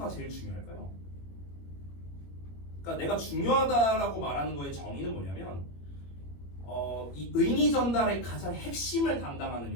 제일 중요할까요? 그러니까 내가 중요하다라고 말하는 거의 정의는 뭐냐면 이 의미 전달의 가장 핵심을 담당하는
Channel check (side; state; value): right; late; 21 ms